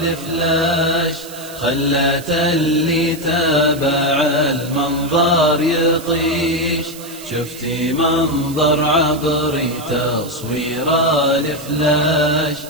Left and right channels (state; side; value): noise; right; hiss, 16 dB below the sound